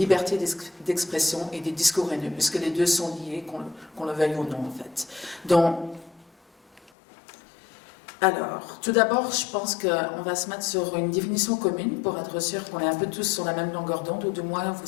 d'expression et des discours haineux, puisque les deux sont liés, qu'on le veuille ou non, en fait. Donc, alors, tout d'abord, je pense qu'on va se mettre sur une définition commune pour être sûr qu'on est un peu tous sur la même longueur d'onde, ou du moins vous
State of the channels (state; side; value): drops out; right; at 6.9 s